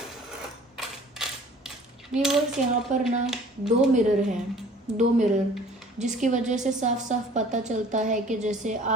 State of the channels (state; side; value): normal; both; correlation 0.50